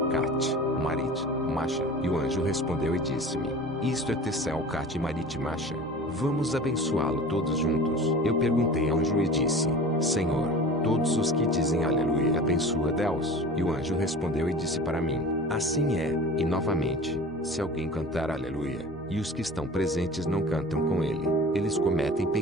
Cat, Marit, Masha? E o anjo respondeu e disse-me: isto é Tessel, Cat, Marit, Masha. Vamos abençoá-lo todos juntos. Eu perguntei ao anjo e disse: Senhor, todos os que dizem aleluia abençoa Deus. E o anjo respondeu e disse para mim: assim é. E novamente, se alguém cantar aleluia, e os que estão presentes não cantam com ele. Eles cometem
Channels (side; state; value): both; normal; correlation 0.38